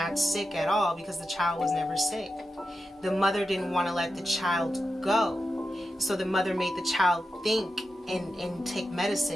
sick at all, because the child was never sick. The mother didn't want to let the child go. So the mother made the child think and take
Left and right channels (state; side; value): normal; both; correlation 0.90